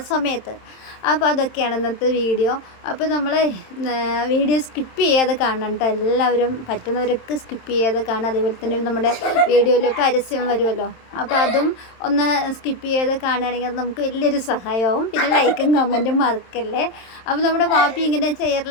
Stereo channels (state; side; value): late; right; 27 ms